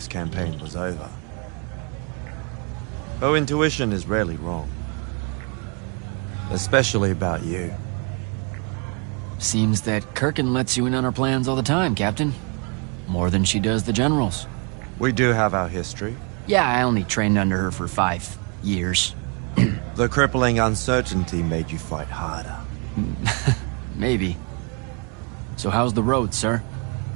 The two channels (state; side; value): quieter; left; 34.9 dB